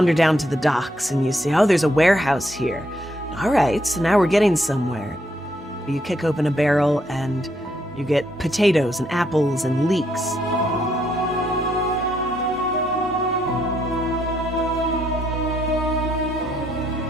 down to the docks and you see, oh, there's a warehouse here. All right, so now we're getting somewhere. You kick open a barrel and you get potatoes and apples and leeks.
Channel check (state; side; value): normal; both; correlation 0.74